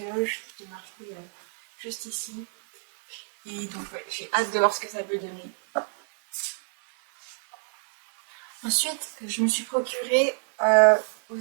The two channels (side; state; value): left; silent; 60 dB below the other